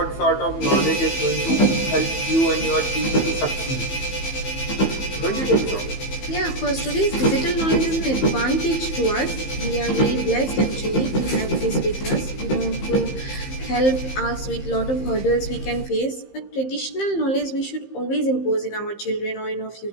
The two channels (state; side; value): late; right; 15 ms